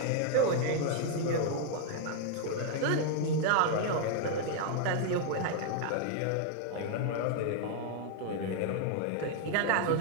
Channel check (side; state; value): both; different; correlation 0.00